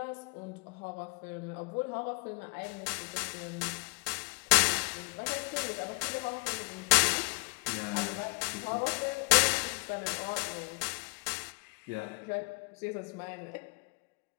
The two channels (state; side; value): quieter; right; 34.2 dB